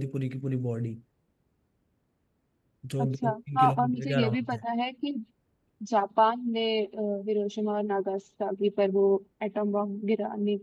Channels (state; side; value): identical; both; correlation 1.00